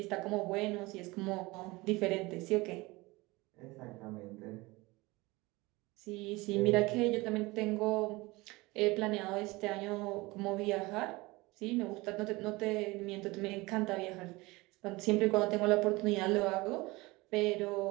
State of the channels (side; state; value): left; quieter; 22.4 dB